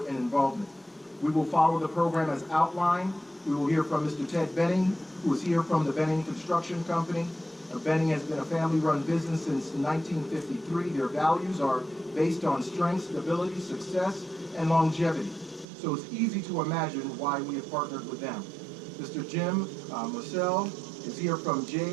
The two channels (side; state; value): left; drops out; at 15.7 s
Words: and involvement. We will follow the program as outlined. We will hear from Mr. Ted Benning, who is here from the Benning Construction Company. Benning has been a family-run business since 1953. Their values are based on strength, stability, success, and longevity. So it's easy to imagine why we have partnered with them. Mr. Jim Marcel is here from